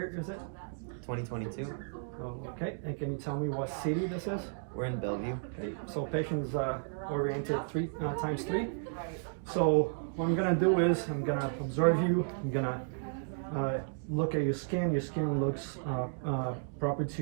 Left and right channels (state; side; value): silent; left; digital silence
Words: is it? 2022. Okay, and can you tell me what city this is? We're in Bellevue. Okay, so patient's oriented 3 times 3. So what I'm gonna do is I'm gonna observe you. I'm gonna look at your skin. Your skin looks proper to